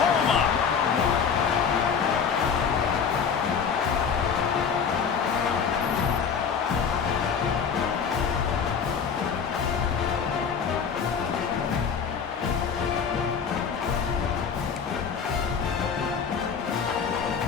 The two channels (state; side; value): quieter; right; 6.6 dB